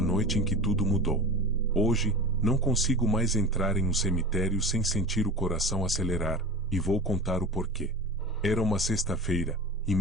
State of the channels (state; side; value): normal; both; correlation 0.33